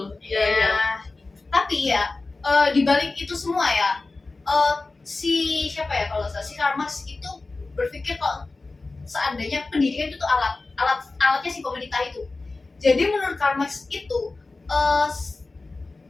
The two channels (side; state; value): right; quieter; 3.5 dB